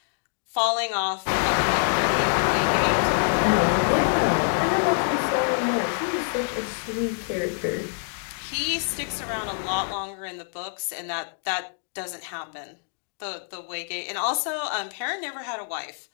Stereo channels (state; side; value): silent; right; digital silence